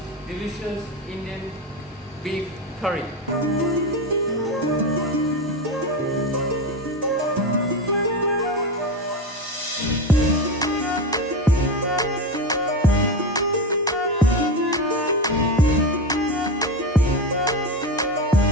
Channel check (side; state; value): both; normal; correlation 0.19